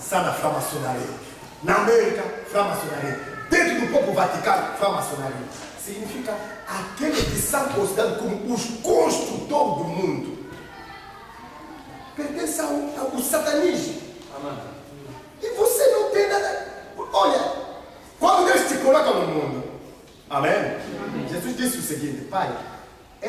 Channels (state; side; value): identical; both; correlation 1.00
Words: da francmaçonaria. Na América, francmaçonaria. Dentro do próprio Vaticano, francmaçonaria. Significa aqueles que são considerados como os construtores do mundo. Pertence ao satanismo. Amém. E você não tem nada. Olha, quando Deus te coloca no mundo, amém? Amém. Jesus disse o seguinte: Pai,